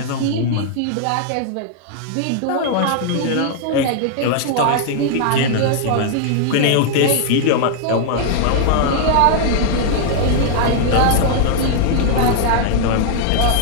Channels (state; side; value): different; both; correlation 0.00